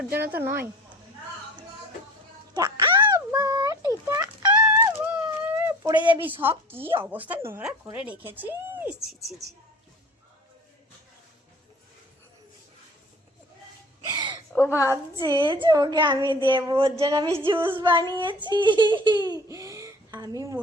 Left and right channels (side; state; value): both; normal; correlation 0.45